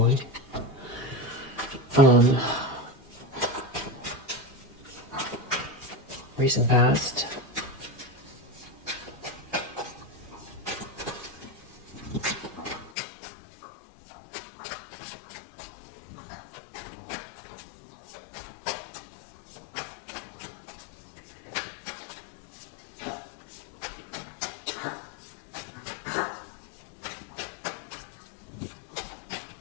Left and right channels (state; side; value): drops out; right; at 12.9 s